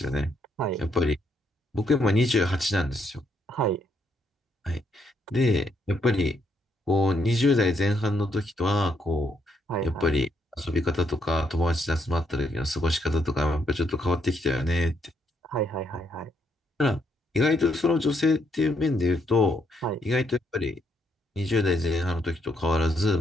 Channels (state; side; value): normal; both; correlation 0.75